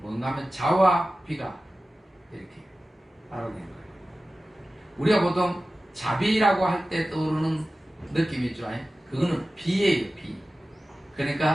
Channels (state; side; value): normal; both; correlation 0.96